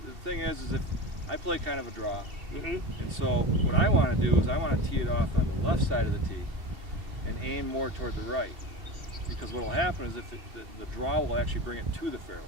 thing is if I play kind of a draw, and so what I want to do is I want to tee it off on the left side of the tee and aim more toward the right, because what will happen is if the draw will actually bring it to the fairway.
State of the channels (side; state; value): left; late; 2.7 ms